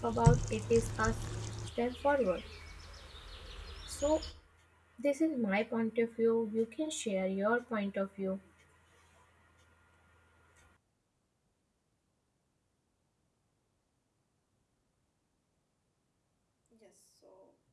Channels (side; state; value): both; identical; correlation 1.00